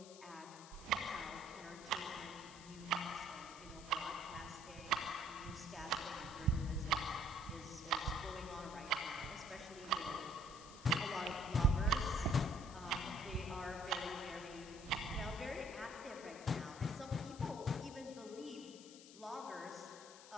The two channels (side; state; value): left; noise; hiss, 17 dB below the sound